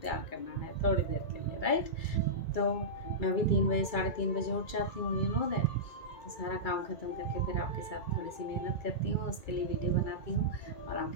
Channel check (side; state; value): right; late; 2.3 ms